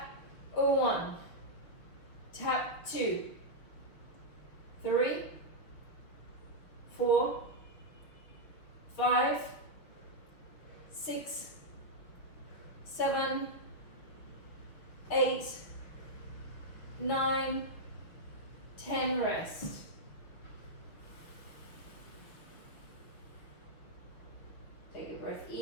1, tap 2, 3, 4, 5, 6, 7, 8, 9, 10, rest. Take a breath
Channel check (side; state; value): right; late; 6.2 ms